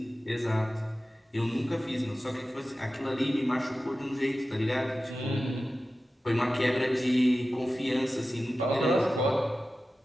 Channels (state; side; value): normal; both; correlation 0.94